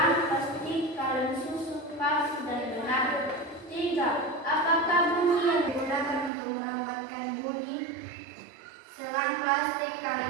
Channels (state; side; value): drops out; left; at 6.3 s